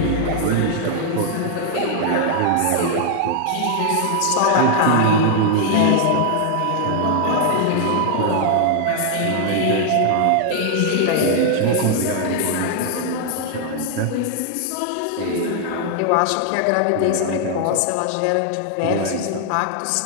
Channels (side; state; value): both; different; correlation 0.00